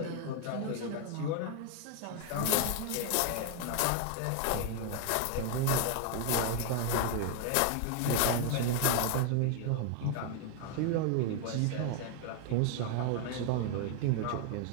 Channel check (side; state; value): both; different; correlation 0.01